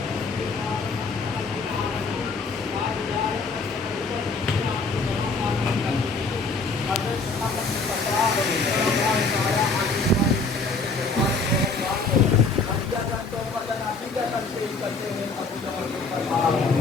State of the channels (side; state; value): right; quieter; 3.9 dB